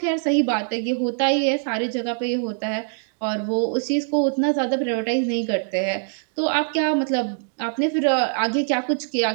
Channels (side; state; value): left; silent; digital silence